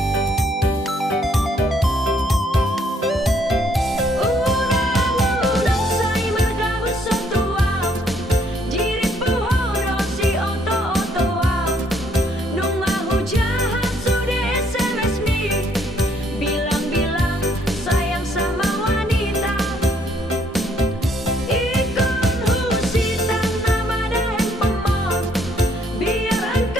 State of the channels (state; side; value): normal; both; correlation 0.67